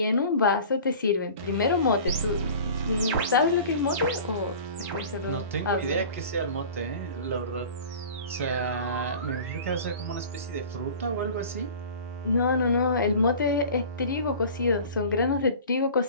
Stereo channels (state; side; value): inverted; both; correlation -0.40